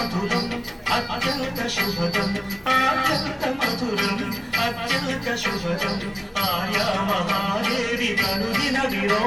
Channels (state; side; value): identical; both; correlation 1.00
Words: అత్యంత శుభదం అత్యంత మధురం అత్యంత శుభదం ఆర్యా మహాదేవి కనుదిన